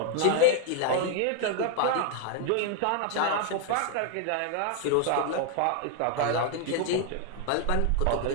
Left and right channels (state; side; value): different; both; correlation 0.00